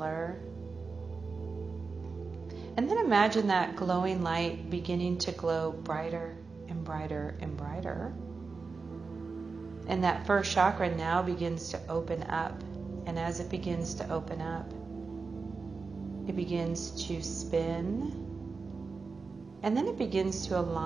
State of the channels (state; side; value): quieter; left; 4.5 dB